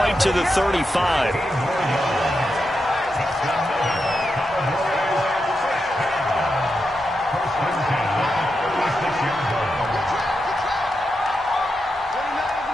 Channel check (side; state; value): both; normal; correlation 0.86